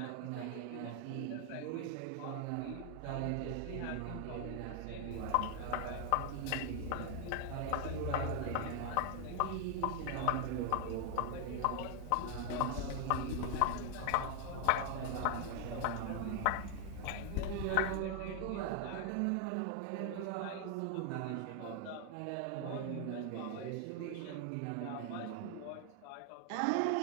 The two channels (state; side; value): different; both; correlation 0.00